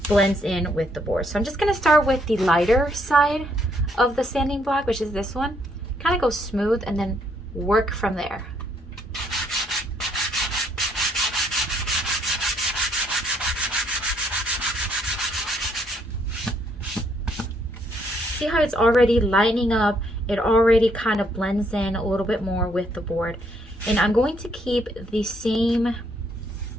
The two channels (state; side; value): normal; both; correlation 0.70